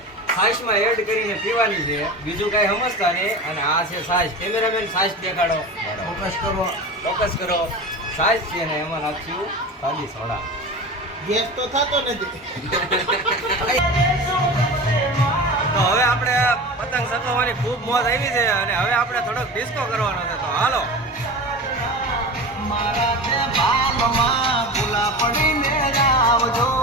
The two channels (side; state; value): both; normal; correlation 0.30